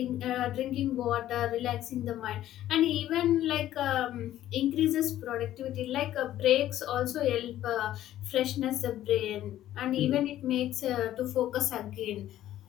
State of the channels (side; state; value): right; quieter; 13.0 dB